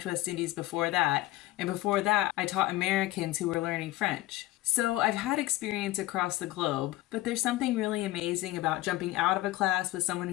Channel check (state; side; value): quieter; right; 17.0 dB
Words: West Indies before that, and before that I taught Americans who were learning French. So I've had experience across the globe, but there's something really amazing about jumping out of a class with someone